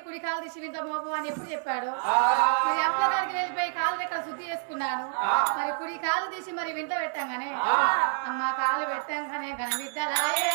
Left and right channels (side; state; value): left; silent; digital silence